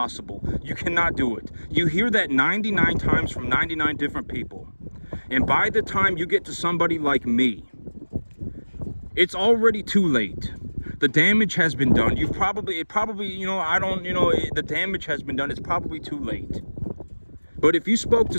You cannot do it. You hear that 99 times from 99 different people. And by the time you get to somebody like me, it's already too late. The damage has been done. The damage has been done. It's probably too late. But if you spoke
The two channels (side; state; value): both; inverted; correlation -1.00